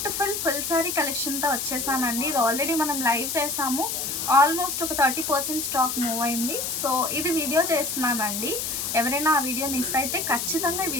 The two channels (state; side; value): noise; left; hiss, 2 dB below the sound